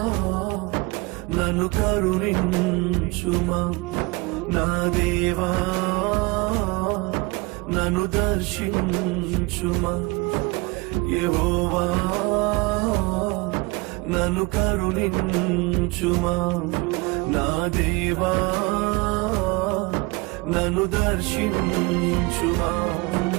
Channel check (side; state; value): left; quieter; 24.7 dB